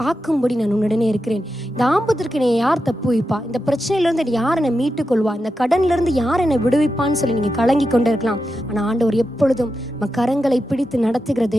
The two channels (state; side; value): normal; both; correlation 0.89